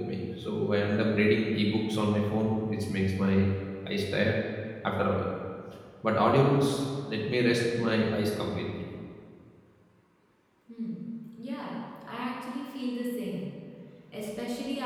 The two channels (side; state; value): both; identical; correlation 1.00